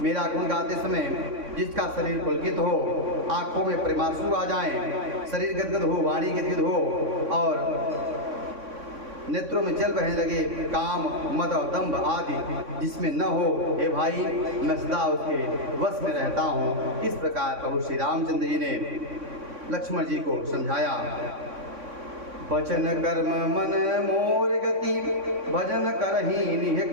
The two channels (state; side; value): late; left; 3.6 ms